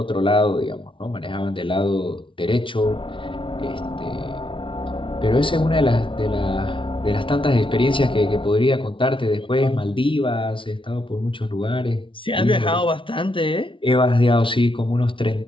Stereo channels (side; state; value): right; late; 0.25 ms